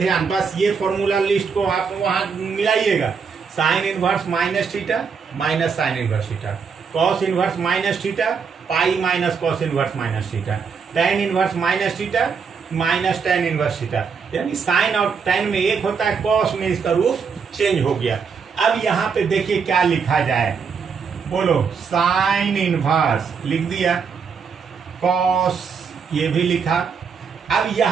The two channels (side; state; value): left; quieter; 5.9 dB